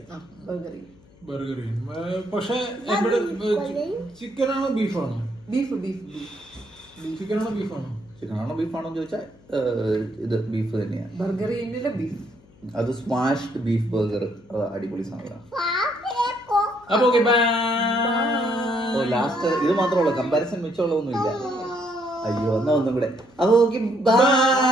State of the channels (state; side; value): noise; left; hum, 27 dB below the sound